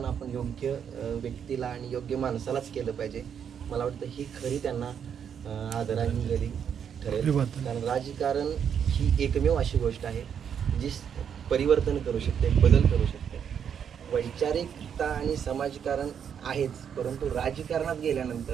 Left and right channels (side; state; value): left; quieter; 8.0 dB